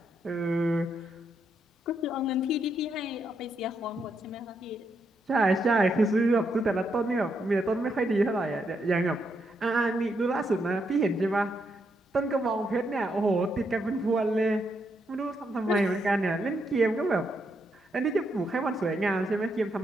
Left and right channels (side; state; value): both; normal; correlation 0.79